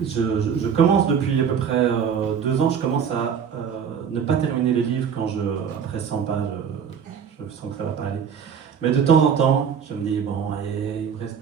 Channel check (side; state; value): left; quieter; 7.4 dB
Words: je commence depuis à peu près 2 ans, je commence à ne pas terminer les livres après 100 pages, je sens que ça va pas aller. Mais de temps en temps, je me dis, bon, allez, il me reste